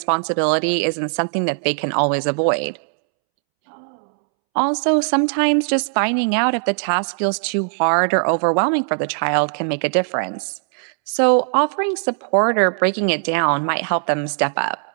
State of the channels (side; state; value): left; silent; 66 dB below the other